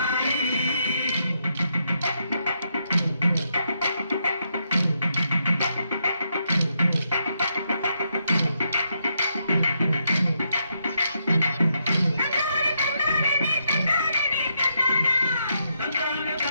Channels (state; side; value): inverted; both; correlation -0.79